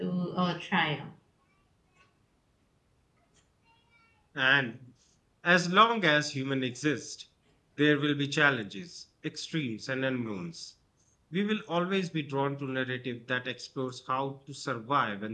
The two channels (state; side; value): identical; both; correlation 1.00